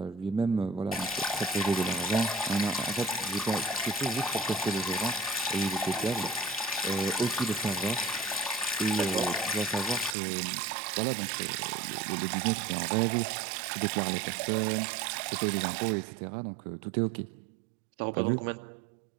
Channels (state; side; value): drops out; left; at 10.2 s